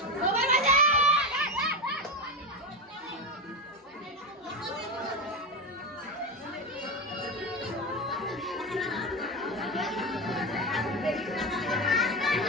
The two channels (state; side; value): normal; both; correlation 0.16